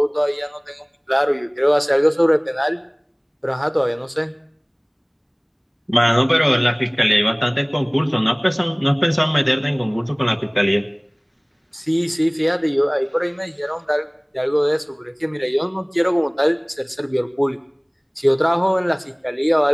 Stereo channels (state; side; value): identical; both; correlation 1.00